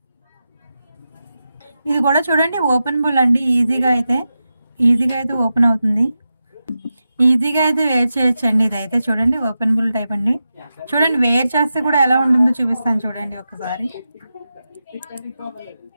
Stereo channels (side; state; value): both; inverted; correlation -0.90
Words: ఇది కూడా చూడండి ఓపెనబుల్ అండి. ఈజీగా అయితే ఓపెన్ అవుతుంది. ఈజీగా అయితే వేర్ చేయొచ్చండి ఇదైతే. చూడండి ఓపెనబుల్ టైప్ అండి. చూడండి వేర్ చేస్తే కూడా ఎలా ఉంటుందో చూపిస్తాను చూడండి ఒకసారి.